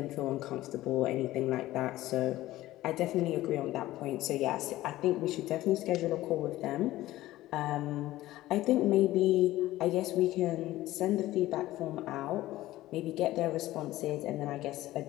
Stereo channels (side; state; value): right; quieter; 16.1 dB